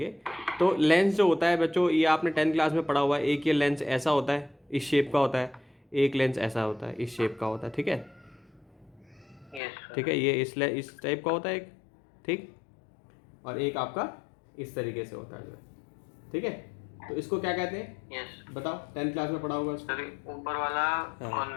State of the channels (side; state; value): right; drops out; at 9.6 s